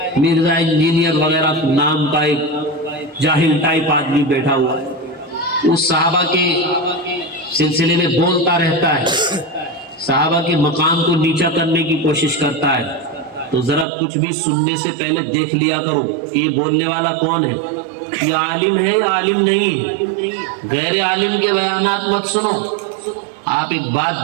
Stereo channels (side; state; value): left; drops out; at 13.9 s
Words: مرزا انجینئر وغیرہ نام کا ایک جاہل ٹائپ آدمی بیٹھا ہوا ہے، وہ صحابہ کے سلسلے میں بولتا رہتا ہے، صحابہ کے مقام کو نیچا کرنے کی کوشش کرتا ہے۔ تو ذرا کچھ بھی سننے سے پہلے دیکھ لیا کرو یہ بولنے والا کون ہے، یہ عالم ہے یا عالم نہیں ہے۔ غیر عالم کے بیانات مت سنو۔ آپ ایک